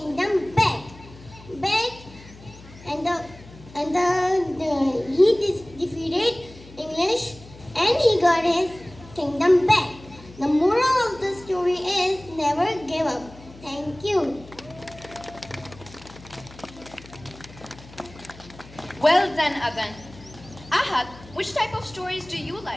back, he defeated English, and he got his kingdom back. The moral of the story is never give up. Thank you. Well done, Adan. Ahad, which type of stories do you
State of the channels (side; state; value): left; noise; hum, 20 dB below the sound